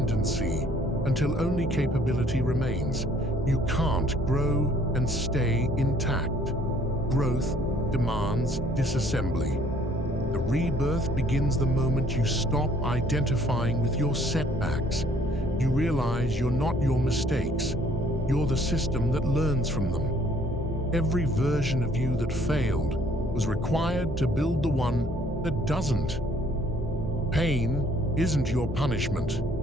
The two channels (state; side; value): normal; both; correlation 0.61